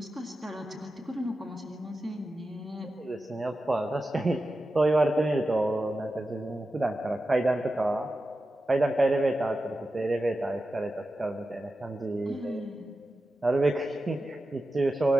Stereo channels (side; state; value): both; normal; correlation 0.92